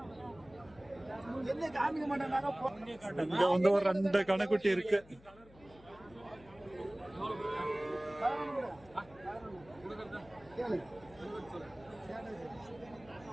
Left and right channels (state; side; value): noise; left; hum, 24 dB below the sound